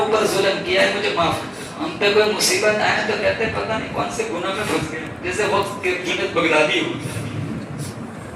ظلم کیا ہے، مجھے معاف. ہم پہ کوئی مصیبت آئے تو کہتے ہیں پتہ نہیں کون سے گناہ میں پھنس گئے، جیسے وقت کے جنید بغدادی ہو.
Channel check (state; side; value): identical; both; correlation 1.00